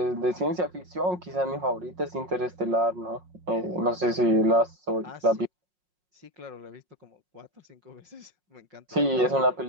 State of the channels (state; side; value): late; left; 5.5 ms